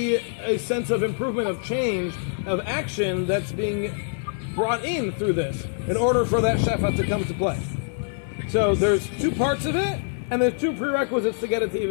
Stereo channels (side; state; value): right; silent; digital silence